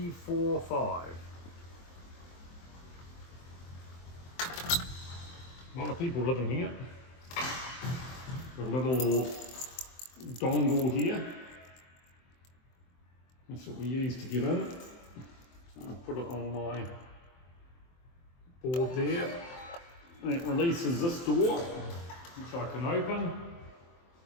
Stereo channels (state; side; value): late; right; 23 ms